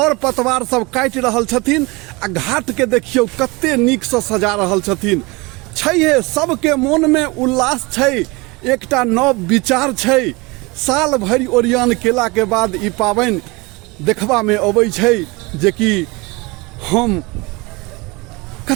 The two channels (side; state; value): left; quieter; 25.3 dB